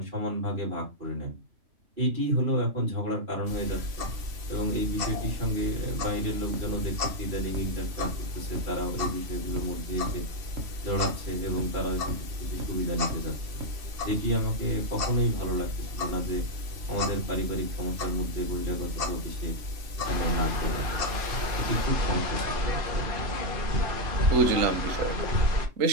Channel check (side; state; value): left; late; 2.7 ms